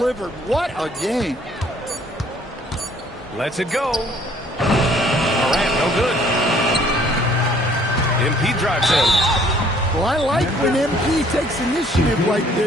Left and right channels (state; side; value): normal; both; correlation 0.59